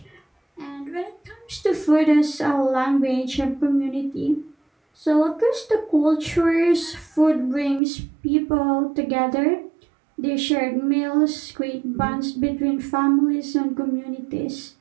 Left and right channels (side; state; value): left; drops out; at 7.8 s